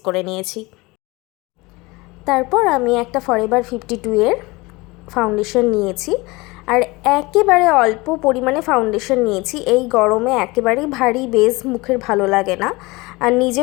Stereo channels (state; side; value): quieter; right; 23.3 dB